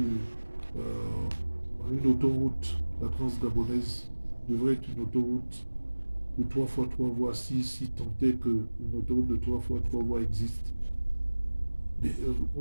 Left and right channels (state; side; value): inverted; both; correlation -1.00